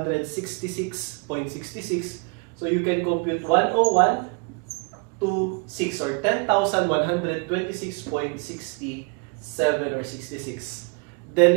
So you can compute 101,266 or 10,126.67 or 66. Then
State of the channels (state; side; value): quieter; left; 34.0 dB